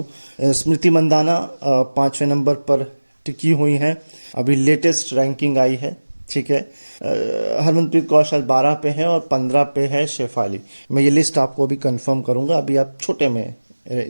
स्मृति मंदाना 5वें नंबर पर टिकी हुई हैं, अभी लेटेस्ट रैंकिंग आई है, ठीक है। हरमनप्रीत कौर शायद 12 पे है और 15 पे है शेफाली। मैं ये लिस्ट आपको अभी कंफर्म करूँगा, अभी आप छोटे में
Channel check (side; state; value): both; inverted; correlation -1.00